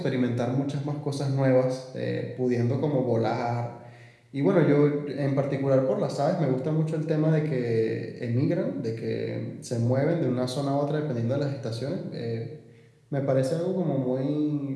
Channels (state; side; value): identical; both; correlation 1.00